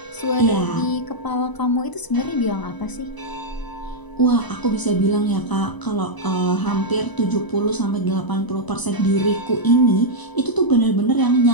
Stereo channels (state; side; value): late; right; 1.0 ms